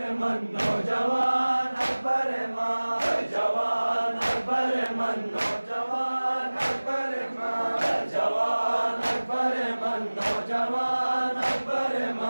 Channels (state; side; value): inverted; both; correlation -1.00